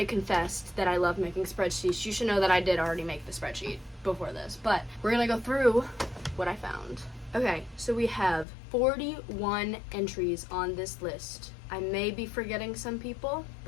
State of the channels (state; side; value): drops out; right; at 8.5 s